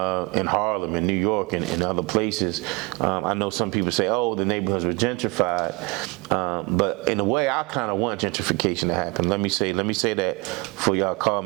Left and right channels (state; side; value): quieter; left; 26.8 dB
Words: Harlem, in New York, and other places. I know some people say, oh, the neighborhoods were gentrified, but in a way, I kind of want gentrification to happen. Let me say that before y'all call